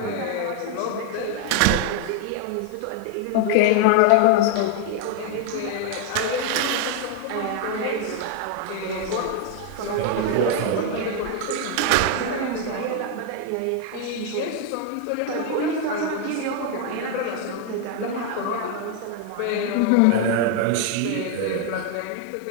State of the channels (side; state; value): both; different; correlation 0.00